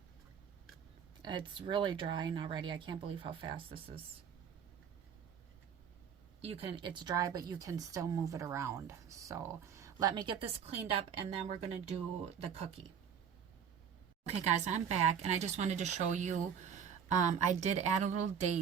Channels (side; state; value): left; quieter; 7.6 dB